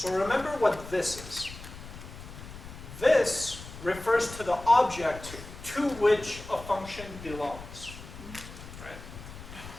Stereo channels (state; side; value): noise; left; rumble, 14 dB below the sound